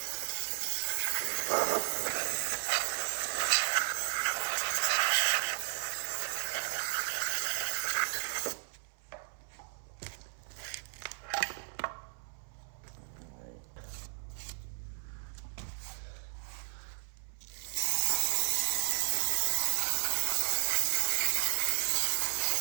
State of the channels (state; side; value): silent; left; 55 dB below the other